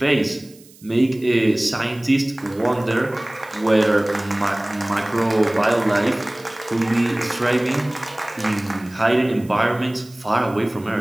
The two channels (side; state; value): right; noise; hiss, 25 dB below the sound